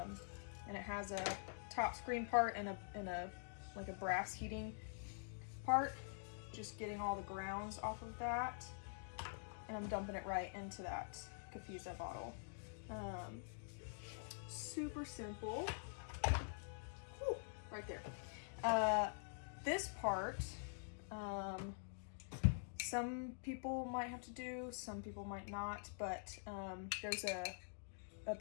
it has a top screen part and a like a brass heating part. Just getting all the grounds off of that, and I'm dumping it right into that Kafiza bottle. Super simple. Whew, right there. This part, some people might have to do, some people might not, but there's a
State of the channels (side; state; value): right; silent; digital silence